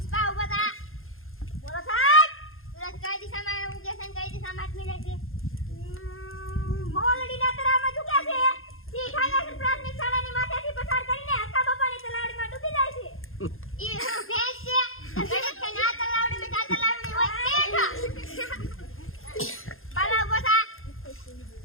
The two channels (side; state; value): right; late; 0.60 ms